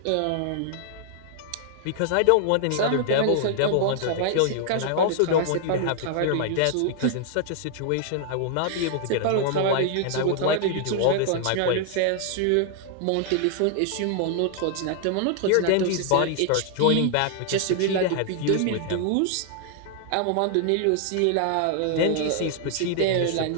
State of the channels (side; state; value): both; different; correlation 0.00